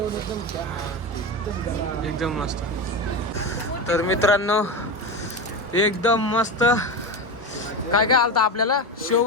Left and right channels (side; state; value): both; normal; correlation 0.19